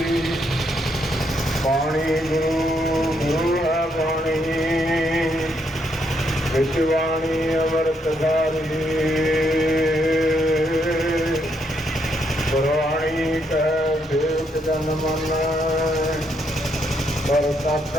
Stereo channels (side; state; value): both; normal; correlation 0.76